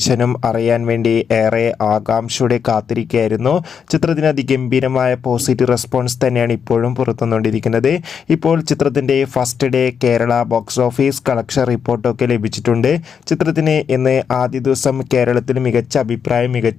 അറിയാൻ വേണ്ടി ഏറെ ആകാംക്ഷയോടെ കാത്തിരിക്കുകയായിരുന്നു. ചിത്രത്തിന് അതിഗംഭീരമായ പോസിറ്റീവ് റെസ്പോൺസ് തന്നെയാണ് ഇപ്പോഴും പുറത്തുവന്നുകൊണ്ടിരിക്കുന്നത്. ഇപ്പോൾ ചിത്രത്തിൻ്റെ first day Kerala box office collection റിപ്പോർട്ടൊക്കെ ലഭിച്ചിട്ടുണ്ട്. ചിത്രത്തിന് ഇന്ന് ആദ്യ ദിവസം കേരളത്തിൽ മികച്ച അഭിപ്രായം,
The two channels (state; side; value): quieter; right; 7.1 dB